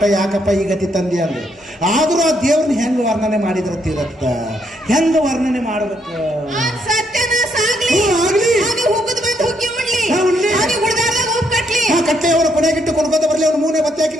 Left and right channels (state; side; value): normal; both; correlation 0.74